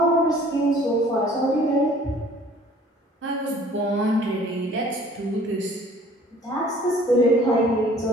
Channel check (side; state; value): both; normal; correlation 0.53